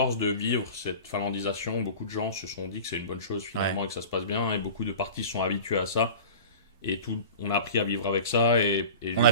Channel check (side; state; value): both; inverted; correlation -0.37